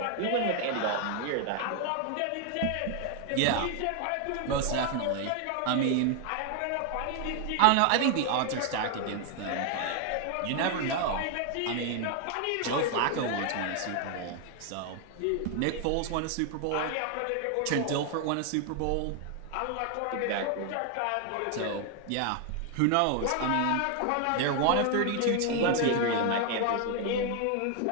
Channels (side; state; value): both; different; correlation 0.01